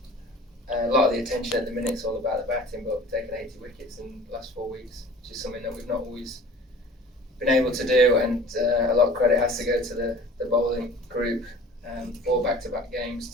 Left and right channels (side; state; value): both; normal; correlation 0.45